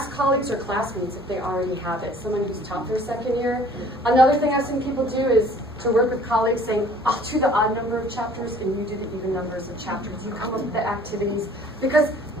colleagues or classmates if they already have it. Someone who's taught their second year. Another thing I've seen people do is to work with colleagues saying, I'll do the odd number of chapters and you do the even numbers of chapters. You come up with the activities. Because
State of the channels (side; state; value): both; normal; correlation 0.53